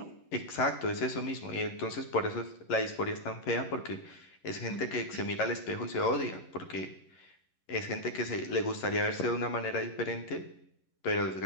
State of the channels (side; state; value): right; late; 11 ms